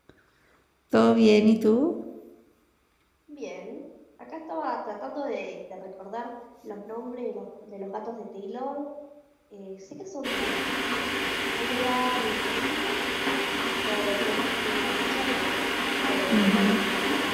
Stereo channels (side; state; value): both; identical; correlation 1.00